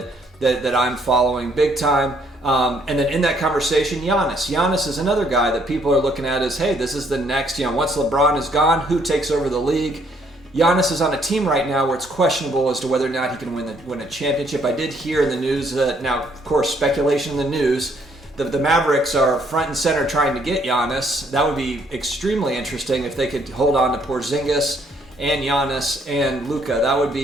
I'm following big time. And then in that conversation, Giannis. Giannis is another guy that people are looking at as, hey, this is the next, once LeBron is gone, who takes over the league? Giannis is on a team right now where it's questionable as to whether or not he can win a championship. I did hear in the news that, now, of course, speculation in the news, the Mavericks are front and center trying to get Giannis. That would be extremely interesting if they could hold on to Porzingis and Giannis and Luka. That would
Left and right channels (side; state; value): both; normal; correlation 0.67